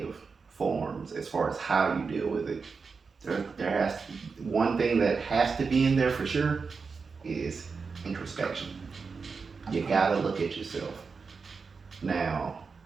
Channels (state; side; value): quieter; left; 5.0 dB